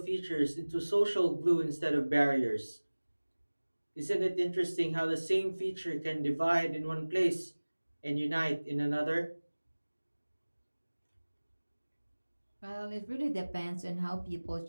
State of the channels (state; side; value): inverted; both; correlation -1.00